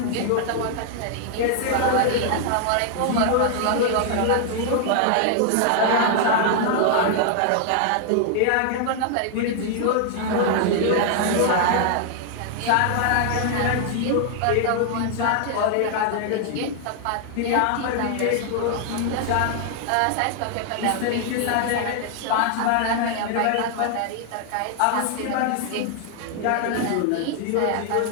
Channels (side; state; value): both; different; correlation 0.00